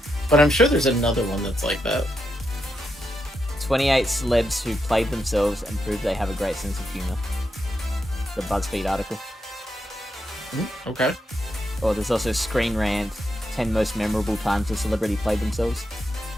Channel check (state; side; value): normal; both; correlation 0.83